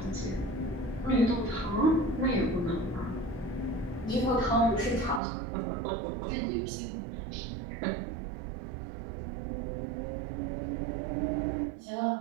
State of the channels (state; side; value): drops out; left; at 5.2 s